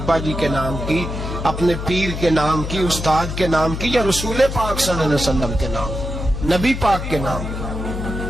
جی کے نام کی، اپنے پیر کے نام کی، استاد کے نام کی، یا رسول پاک صلی اللہ علیہ وسلم کے نام، نبی پاک کے نام؟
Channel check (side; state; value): left; noise; hum, 5 dB below the sound